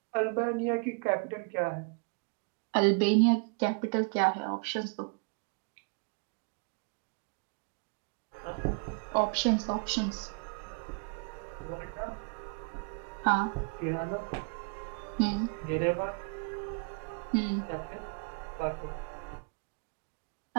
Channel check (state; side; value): quieter; left; 37.3 dB